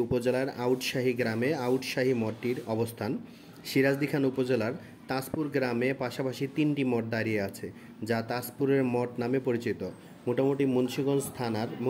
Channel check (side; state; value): both; identical; correlation 1.00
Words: উপজেলার আউটশাহী গ্রামে আউটশাহী মঠটির অবস্থান। সিরাজদি খান উপজেলার তাজপুর গ্রামে পাশাপাশি 3টি মঠ দাঁড়িয়ে আছে, যা তাজপুরের মঠ নামে পরিচিত। মোটামুটি